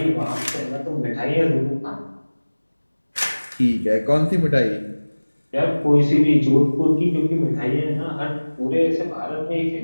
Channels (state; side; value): inverted; both; correlation -1.00